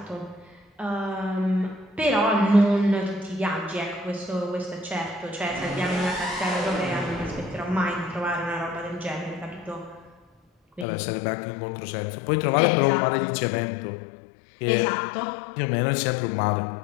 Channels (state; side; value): drops out; right; at 10.9 s